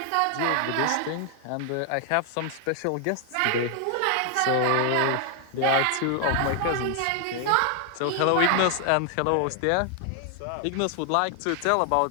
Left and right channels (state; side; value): different; both; correlation 0.00